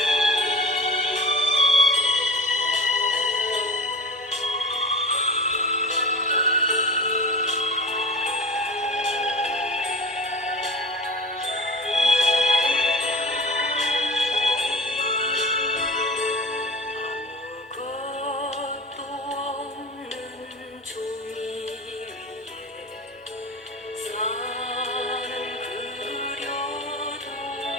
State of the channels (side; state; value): both; normal; correlation 0.35